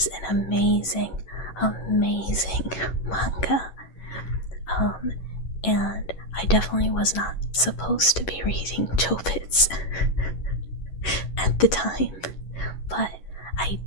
an amazing manga. And I definitely was not supposed to be reading Chobits at the time, but I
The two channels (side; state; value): right; late; 11 ms